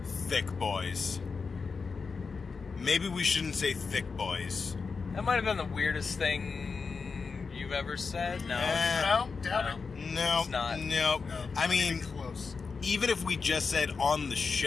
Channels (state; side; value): quieter; right; 4.9 dB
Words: thick boys. Maybe we shouldn't say thick boys. That might have been the weirdest thing you've ever said. No. Doubt it. No. It's not. No. I mean, close. Even if we just said on the